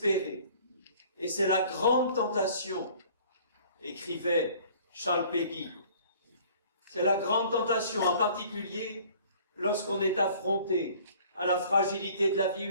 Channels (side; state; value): both; inverted; correlation -0.52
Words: Et c'est la grande tentation, écrivait Charles Péguy. C'est la grande tentation, en particulier lorsqu'on est affronté à la fragilité de la vie